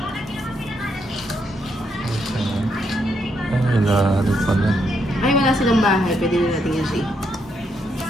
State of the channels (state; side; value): normal; both; correlation 0.77